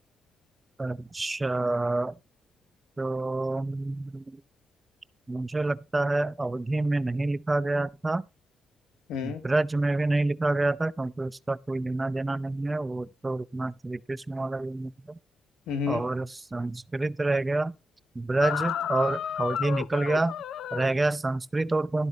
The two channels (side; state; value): both; normal; correlation 0.94